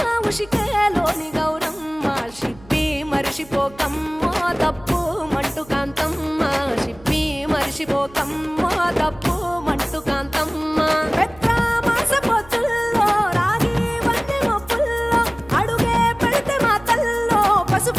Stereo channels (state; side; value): noise; right; hum, 23 dB below the sound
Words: ఉషికేలోని గౌరమ్మ షిప్పి మరిషిపోకమ్మో తప్పు మంటు కాంతమ్మ షిప్పి మరిషిపోకమ్మో తప్పు మంటు కాంతమ్మ పెద్ద మాస పొత్తుల్లో రాగి వంటి మొప్పుల్లో అడుగే పెడితే మాతల్లో